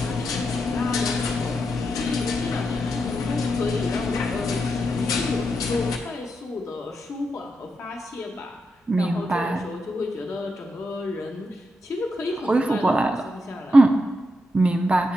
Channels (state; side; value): normal; both; correlation 0.84